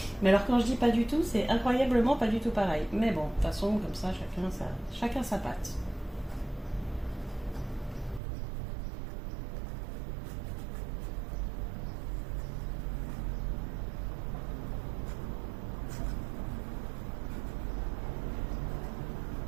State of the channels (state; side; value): drops out; left; at 8.2 s